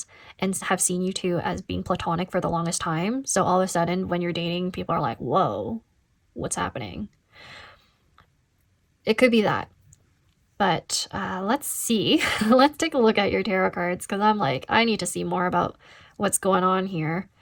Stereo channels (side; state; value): both; identical; correlation 1.00